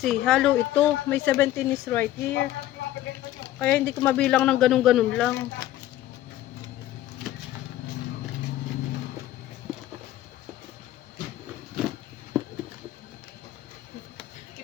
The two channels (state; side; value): quieter; right; 13.9 dB